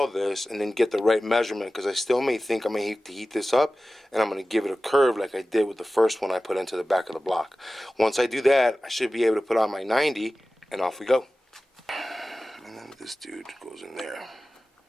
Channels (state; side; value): normal; both; correlation 0.96